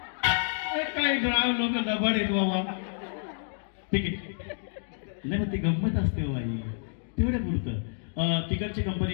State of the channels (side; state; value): right; silent; digital silence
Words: काही ग्राम लोक लबाड आहेत बाबा. ठीक आहे नाही मग ती गंमत असते बाबा तेवढ्या पुरतं. तिकडची कंपनी